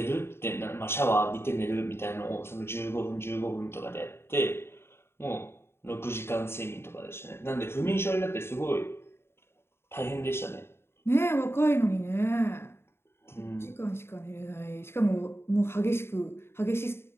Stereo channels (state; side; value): late; right; 0.12 ms